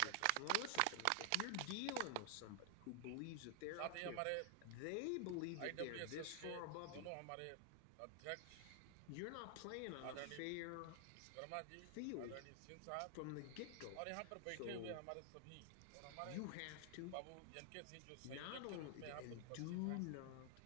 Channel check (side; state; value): both; different; correlation 0.00